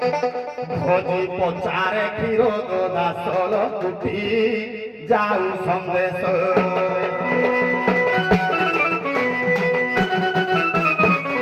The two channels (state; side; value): identical; both; correlation 1.00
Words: খোঁজি পচারে ক্ষীর দাসল কুটি যাও সন্দেশ